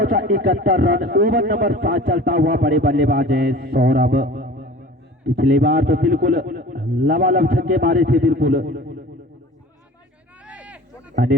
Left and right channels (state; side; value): normal; both; correlation 0.41